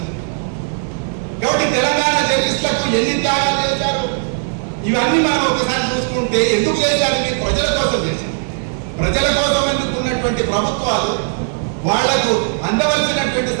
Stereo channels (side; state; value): left; silent; digital silence